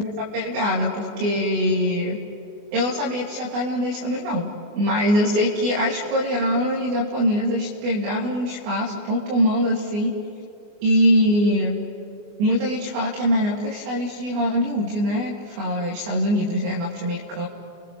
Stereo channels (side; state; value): left; late; 24 ms